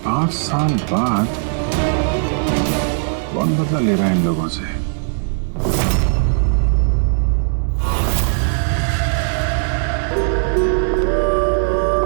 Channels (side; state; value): left; silent; 67 dB below the other